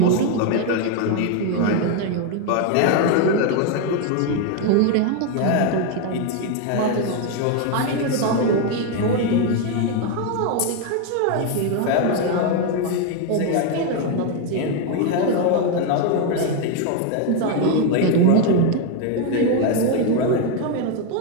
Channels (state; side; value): different; both; correlation 0.01